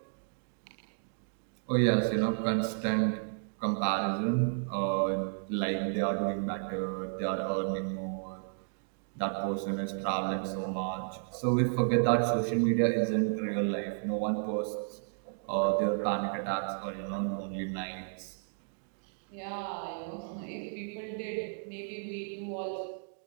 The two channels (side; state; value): left; silent; digital silence